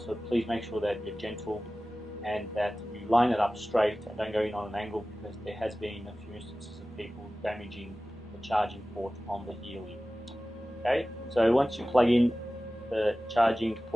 please make sure that you're gentle and that you line it up straight and don't go in on an angle, because there has been a few instances of people damaging the charging port on the Healy. Okay, so once you plug in the charging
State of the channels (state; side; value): normal; both; correlation 0.96